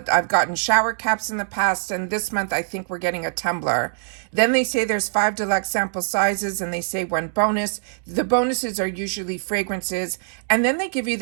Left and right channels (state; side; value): silent; left; digital silence